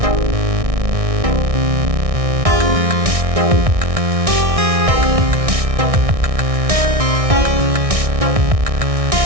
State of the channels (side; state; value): left; late; 1.6 ms